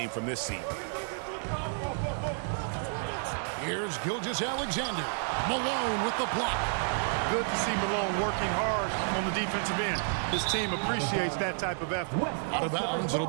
from this seat. Here's Gilgeous-Alexander. Malone with the block. Good to see Malone working hard on the defensive end. His team appreciates that type of effort. Out of bounds, it'll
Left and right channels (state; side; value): silent; left; 57 dB below the other